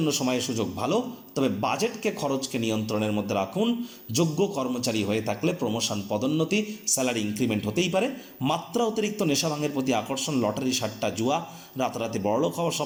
সময় সুযোগ ভালো। তবে খরচকে নিয়ন্ত্রণের মধ্যে রাখুন। যোগ্য কর্মচারী হয়ে থাকলে প্রমোশন, পদোন্নতি, স্যালারি ইনক্রিমেন্ট হতেই পারে। মাত্রা অতিরিক্ত নেশা ভাঙের প্রতি আকর্ষণ, লটারি, সাট্টা, জুয়া, রাতারাতি বড়লোক হওয়ার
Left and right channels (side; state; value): both; identical; correlation 1.00